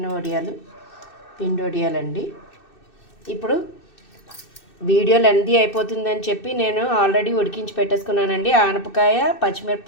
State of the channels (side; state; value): right; late; 2.6 ms